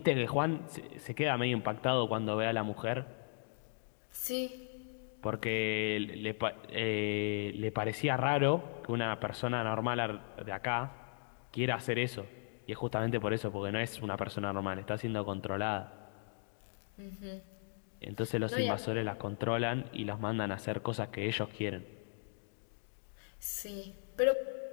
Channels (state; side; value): silent; right; digital silence